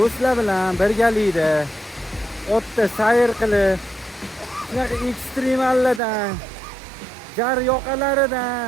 bilan birgalikda otda sayr qilib, shunaqa ekstremallardan, jar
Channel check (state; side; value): drops out; left; at 6.0 s